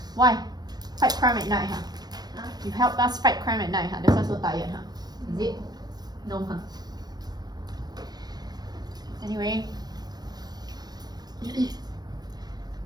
Why? Fight crime at night, huh? Huh? You help us fight crime at night, huh? That's why so tired, huh? Is it? No, huh? Anyway.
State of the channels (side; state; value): left; late; 0.19 ms